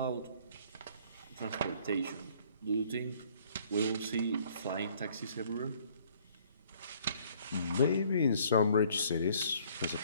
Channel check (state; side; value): inverted; both; correlation -0.60